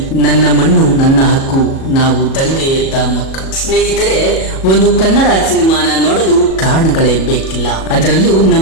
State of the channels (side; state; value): right; late; 37 ms